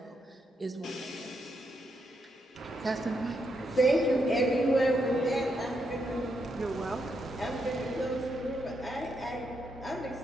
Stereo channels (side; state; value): both; normal; correlation 0.80